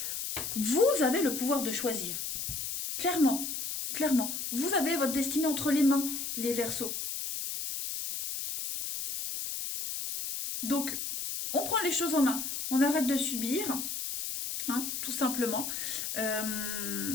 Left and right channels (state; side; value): noise; left; hiss, 4 dB below the sound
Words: vous avez le pouvoir de choisir. Clairement, clairement. Vous avez votre destinée entre les mains, les Verseaux. Donc, on prend les choses en main. On arrête de subir, hein, tout simplement. Euh,